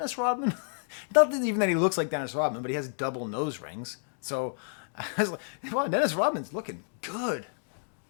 Rodman? Not even that he looks like Dennis Rodman, but he has double nose rings. So I was like, wow, Dennis Rodman's looking good.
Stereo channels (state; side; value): silent; right; 58 dB below the other